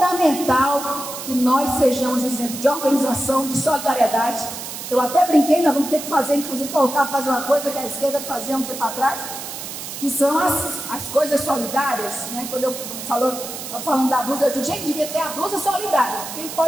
que nós sejamos exemplo de organização, de solidariedade. Eu até brinquei, nós vamos ter que fazer, inclusive voltar a fazer uma coisa que a esquerda fazia um tempo atrás, que são as coisas solidárias, né? Quando eu falando da blusa, eu digo, gente, devia ter a blusa solidária. Quem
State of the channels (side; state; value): right; noise; hiss, 9 dB below the sound